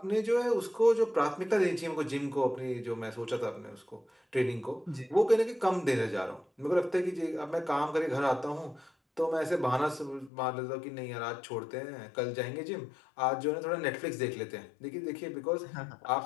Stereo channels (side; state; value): right; drops out; at 10.3 s